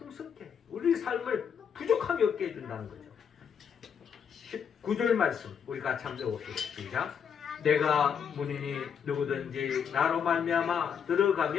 우리 삶을 부족함이 없게 해준다는 거죠. 19절 말씀 우리 같이 한번 읽어봅시다. 시작. 내가 문이니 누구든지 나로 말미암아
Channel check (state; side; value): quieter; right; 7.5 dB